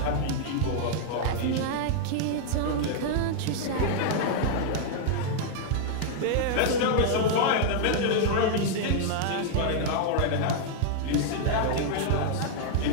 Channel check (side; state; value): both; different; correlation -0.01